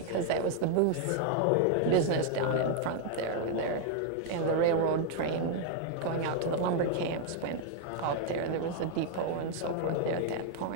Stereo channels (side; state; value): both; different; correlation 0.00